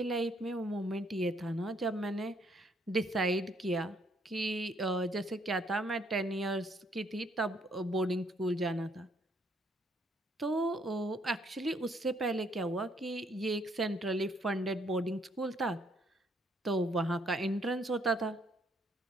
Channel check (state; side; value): normal; both; correlation 0.69